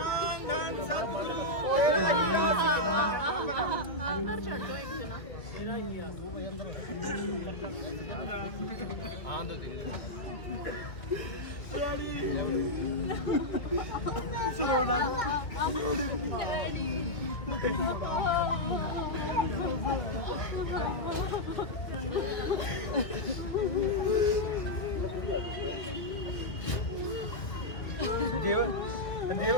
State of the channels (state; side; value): late; right; 2.1 ms